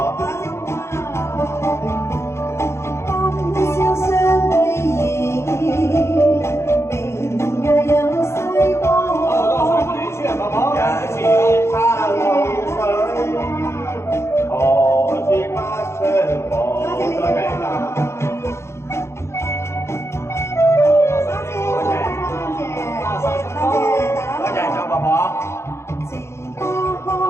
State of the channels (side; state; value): right; late; 0.13 ms